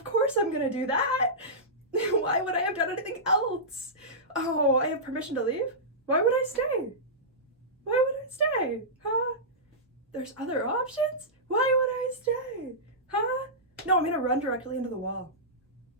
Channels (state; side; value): normal; both; correlation -0.16